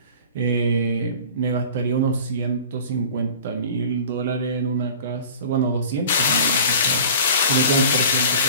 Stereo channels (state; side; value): inverted; both; correlation -0.42